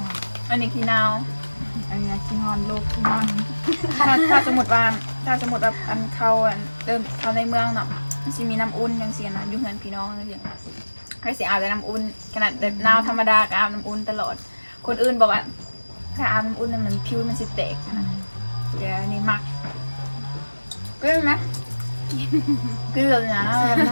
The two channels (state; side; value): inverted; both; correlation -1.00